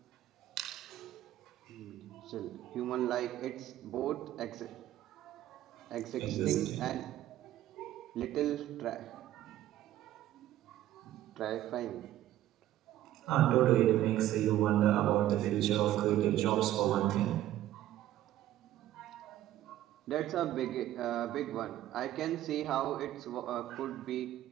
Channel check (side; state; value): left; quieter; 13.5 dB